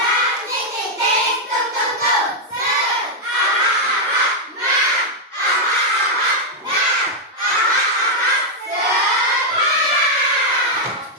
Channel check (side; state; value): both; normal; correlation -0.02